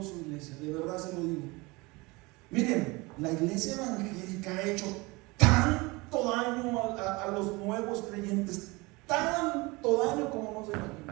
iglesia, de verdad se lo digo. Miren, la iglesia evangélica ha hecho tanto daño a los nuevos creyentes, tanto daño como no se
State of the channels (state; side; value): quieter; left; 24.3 dB